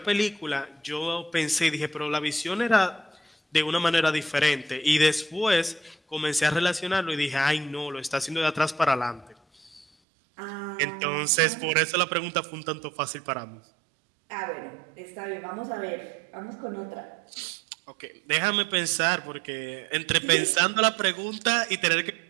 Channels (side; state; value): left; drops out; at 9.9 s